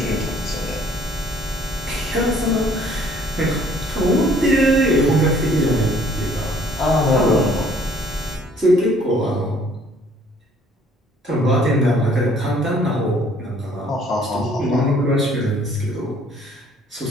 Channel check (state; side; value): normal; both; correlation 0.59